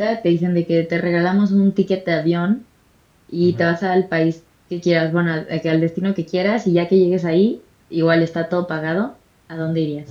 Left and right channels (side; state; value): both; identical; correlation 1.00